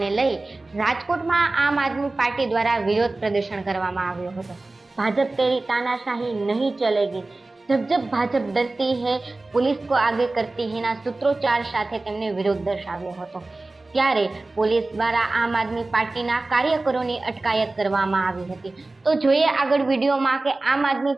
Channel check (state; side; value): quieter; left; 3.1 dB